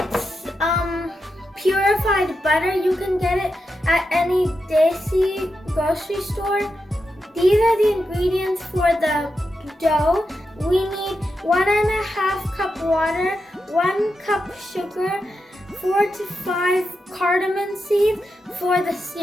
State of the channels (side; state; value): both; normal; correlation 0.87